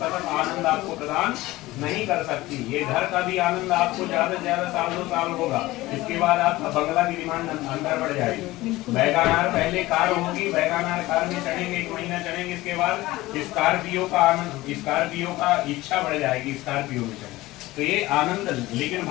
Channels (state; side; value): quieter; right; 18.4 dB